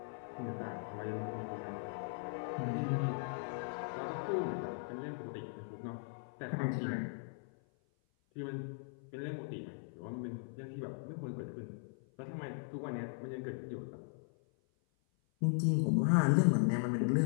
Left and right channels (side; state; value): right; silent; 52 dB below the other